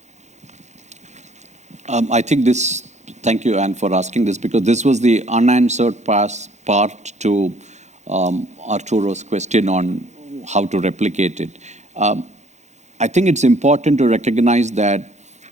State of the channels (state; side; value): late; left; 0.33 ms